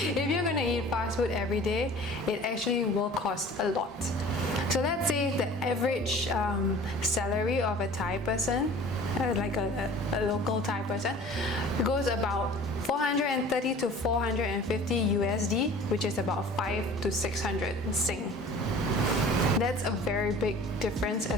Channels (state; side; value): normal; both; correlation 0.45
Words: you're going to eat fast food every day, it actually will cost a lot. So let's say the average salary of a Thai person, like a local Thai person, goes about 430 to 450 USD, which is about 5 to 600 Sing. That's a very big difference